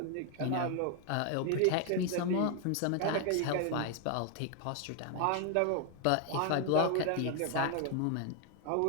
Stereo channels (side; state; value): both; different; correlation 0.00